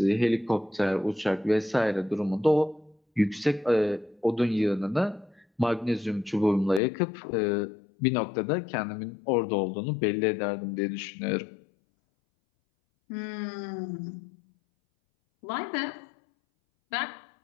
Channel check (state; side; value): drops out; right; at 6.8 s